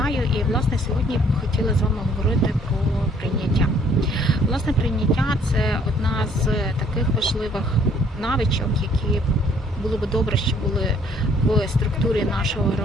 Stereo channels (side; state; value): both; normal; correlation 0.61